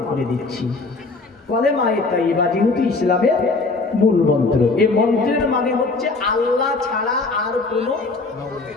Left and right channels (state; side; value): quieter; right; 3.6 dB